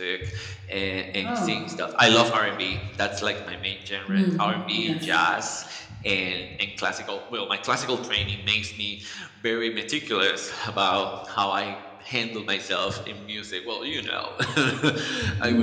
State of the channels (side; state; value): both; identical; correlation 1.00